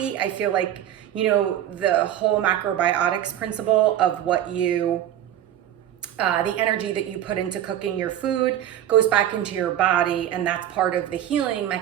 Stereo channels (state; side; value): quieter; left; 11.2 dB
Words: I feel like, you know, the whole macrobiotics principle of what you, the energy that you put into cooking your food goes back into your body, and that's part of the healing